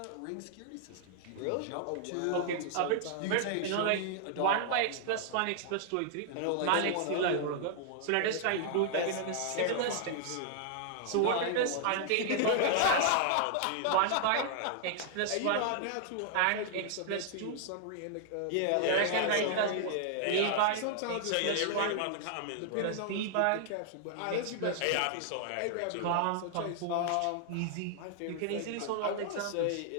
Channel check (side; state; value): both; different; correlation -0.01